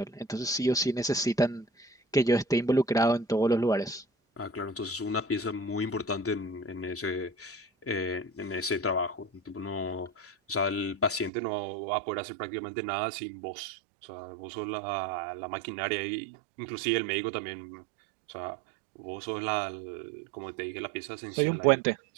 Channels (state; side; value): drops out; left; at 11.3 s